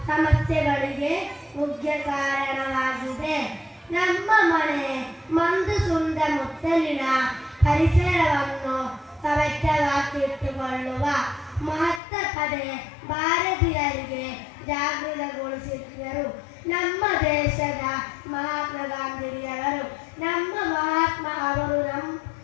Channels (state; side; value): drops out; right; at 12.0 s